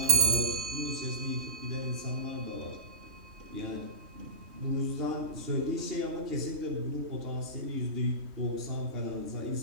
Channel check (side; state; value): left; late; 3.2 ms